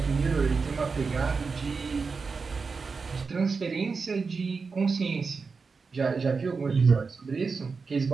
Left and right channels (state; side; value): quieter; left; 4.8 dB